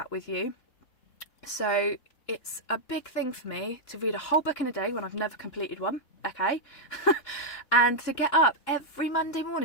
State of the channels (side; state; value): right; late; 3.7 ms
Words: with you. So it's a big thing for me to read a whole book in a day when I've never completed one. Okay? And to get up every Monday